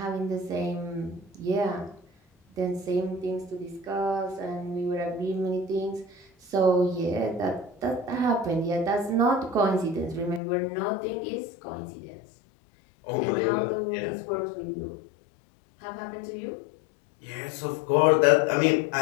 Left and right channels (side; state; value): right; drops out; at 10.4 s